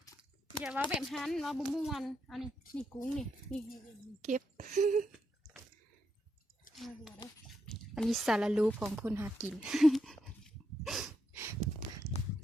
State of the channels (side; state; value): both; normal; correlation 0.81